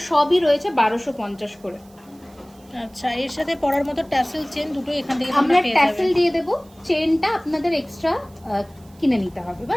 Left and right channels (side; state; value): right; noise; hiss, 29 dB below the sound